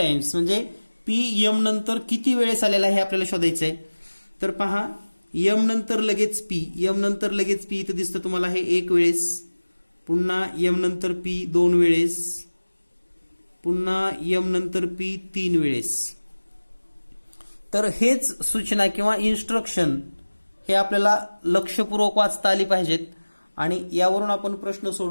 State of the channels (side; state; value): both; inverted; correlation -1.00